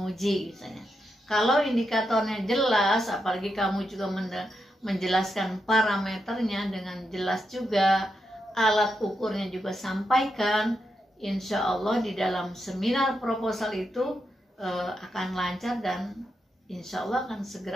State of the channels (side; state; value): both; normal; correlation 0.84